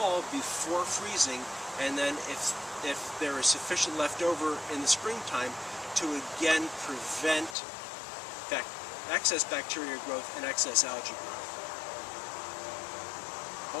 before freezing, and then if there is sufficient left over in the springtime, to again prevent excess bacteria growth and excess algae growth.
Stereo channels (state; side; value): drops out; right; at 7.6 s